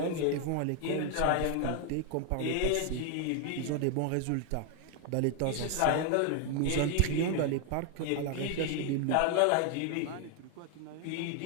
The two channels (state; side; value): different; both; correlation 0.00